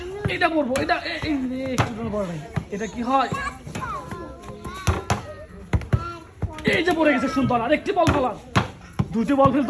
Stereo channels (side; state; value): both; identical; correlation 1.00